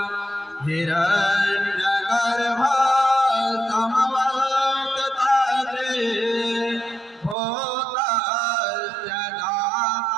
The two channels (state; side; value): drops out; left; at 7.4 s